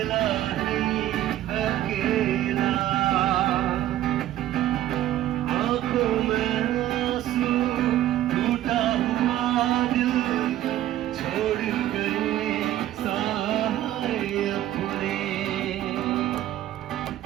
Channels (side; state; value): left; quieter; 13.3 dB